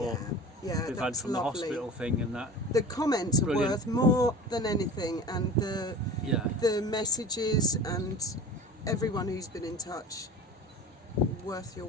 we've had from the hospital thing and that. The comments are worth more than anything, and the messages and everyone who's been in touch, worth your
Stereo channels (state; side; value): normal; both; correlation 0.38